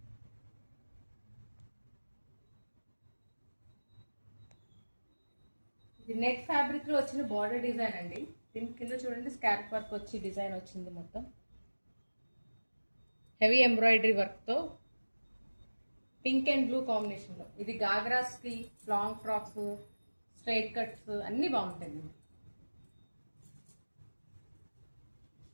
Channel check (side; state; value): both; inverted; correlation -1.00